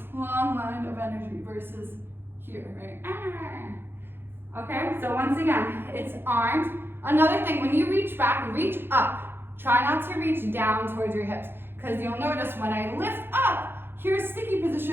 long line of energy versus here, right? Okay, so once again, it's arms. Another thing, when you reach back, reach up. Try not to reach down towards your hips, because you'll notice when I lift up, here's sticky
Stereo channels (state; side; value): late; left; 0.10 ms